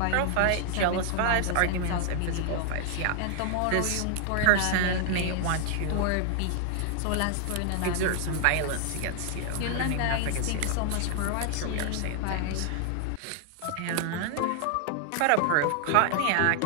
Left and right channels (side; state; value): both; different; correlation 0.00